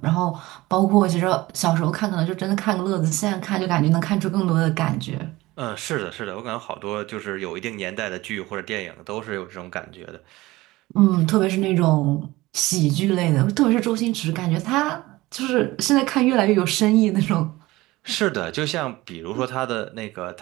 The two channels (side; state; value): left; quieter; 19.3 dB